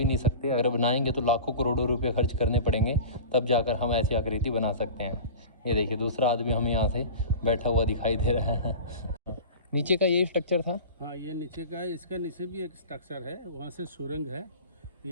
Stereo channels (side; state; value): both; inverted; correlation -0.34